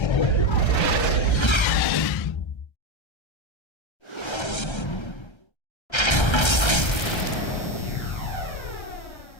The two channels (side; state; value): right; late; 1.3 ms